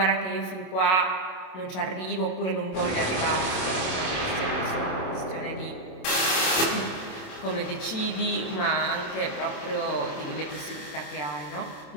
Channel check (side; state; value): right; late; 27 ms